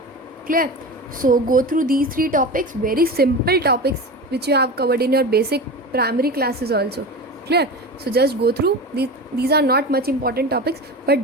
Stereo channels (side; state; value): both; normal; correlation 0.28